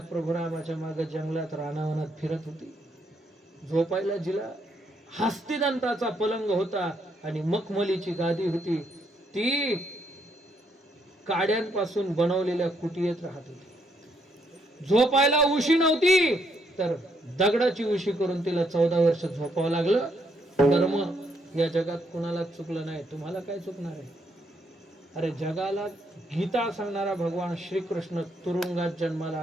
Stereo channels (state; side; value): normal; both; correlation 0.74